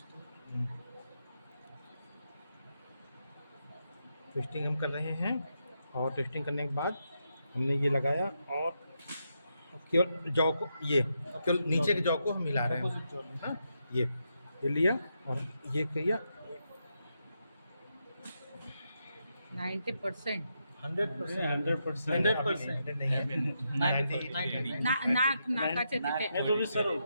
ट्विस्टिंग हम कर रहे हैं। और ट्विस्टिंग करने के बाद हमने ये लगाया और केवल जॉ को, ये केवल नीचे के जॉ को हम मिला रहे हैं। हाँ ये लिया और ये किया 90%. 100% नहीं है, नाकाच्या तिथे. नहीं वो भी सर हो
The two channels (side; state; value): both; inverted; correlation -0.83